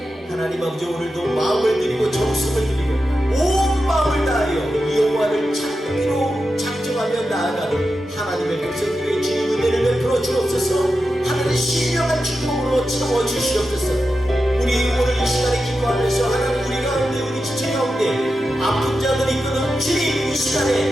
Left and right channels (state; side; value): normal; both; correlation 0.90